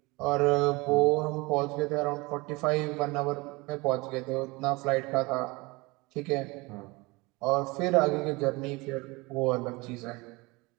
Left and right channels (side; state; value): left; quieter; 24.3 dB